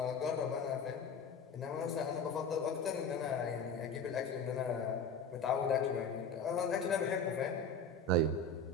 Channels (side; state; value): right; quieter; 3.6 dB